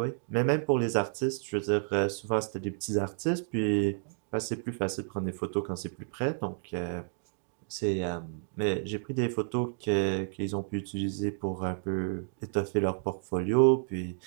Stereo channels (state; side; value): silent; left; digital silence